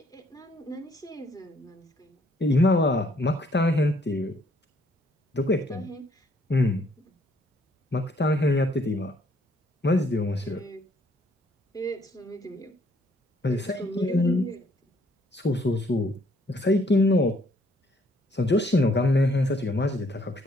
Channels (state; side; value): normal; both; correlation 0.66